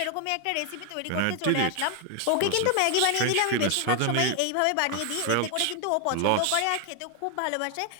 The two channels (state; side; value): different; both; correlation 0.00